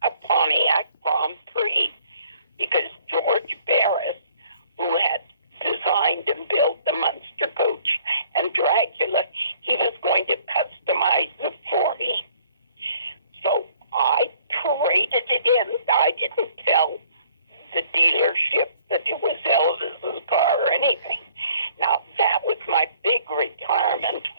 a Pontiac Grand Prix because George Barris, who had designed and built the Munster coach and Dracula, he was going to customize it for me. So I traded it in. I didn't tell the dealership that it was Elvis's car or anything. Now, that was my big retirement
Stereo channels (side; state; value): both; inverted; correlation -0.59